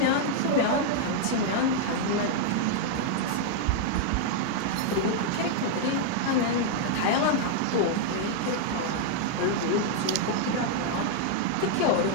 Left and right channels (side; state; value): both; different; correlation 0.00